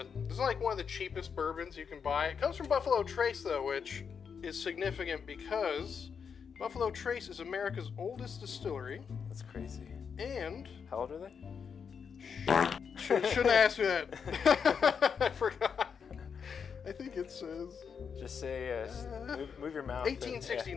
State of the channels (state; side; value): quieter; right; 6.5 dB